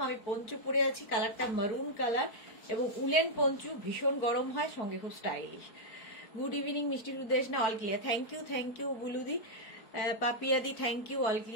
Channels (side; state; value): right; late; 4.5 ms